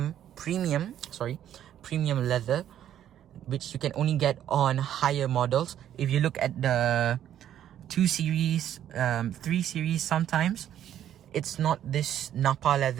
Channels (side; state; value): left; quieter; 10.8 dB